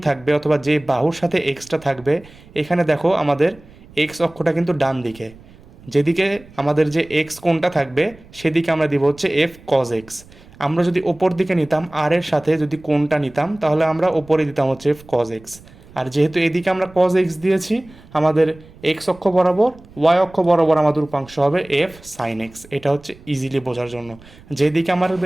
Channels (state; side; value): noise; right; rumble, 23 dB below the sound